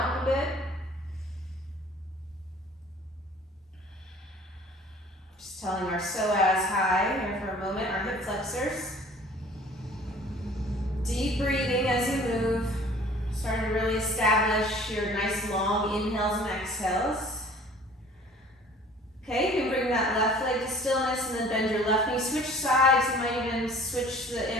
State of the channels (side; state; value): both; normal; correlation 0.50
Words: a bit. Just telling our psoas high here for a moment, our hip flexors. Deep breathing as you move. Starting to really establish your nice long inhales and exhales. Okay, you can bring that left leg to stillness and then bend your left knee. Switch sides. You might even switch the